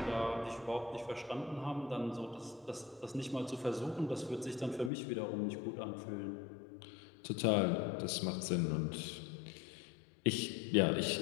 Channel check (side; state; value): right; drops out; at 4.9 s